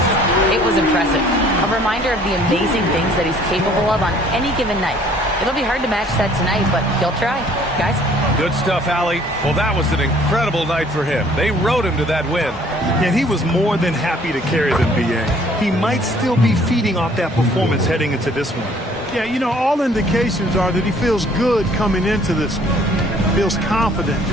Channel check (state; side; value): normal; both; correlation 0.57